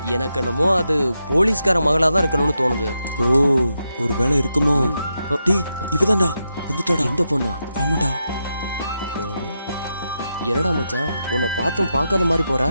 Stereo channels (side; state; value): both; inverted; correlation -0.85